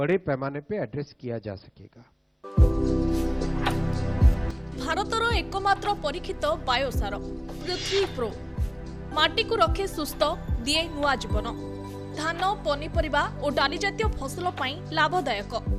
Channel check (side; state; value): both; identical; correlation 1.00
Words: पैमाने पे एड्रेस किया जा सकेगा। भारतर एकमात्र परीक्षित बायोसार पृथ्वी प्रो माटी को रखे सुस्थ दिए नुआ जीवन धान पनीपरिबा और डाली जातीय फसल लाभदायक